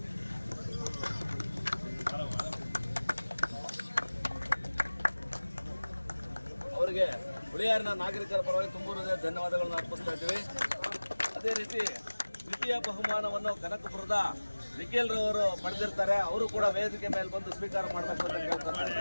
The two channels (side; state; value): both; inverted; correlation -1.00